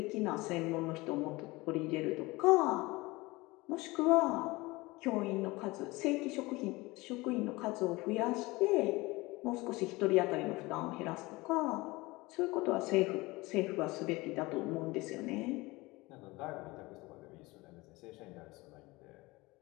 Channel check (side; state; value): right; quieter; 22.0 dB